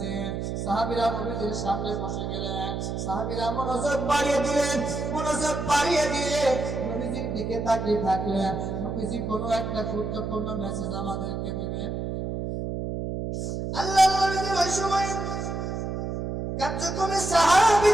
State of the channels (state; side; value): noise; right; hum, 3 dB below the sound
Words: সাহাবীরা নবীজির সামনে বসে গেলেন। সাহাবীরা মনোযোগ বাড়িয়ে দিলেন। মনোযোগ বাড়িয়ে দিয়ে নবীজির দিকে তাকিয়ে থাকলেন। নবীজি কোনো একটা গুরুত্বপূর্ণ মেসেজ আমাদেরকে দিবেন। আল্লাহ নবীজি ওই সময় কার্যক্রমে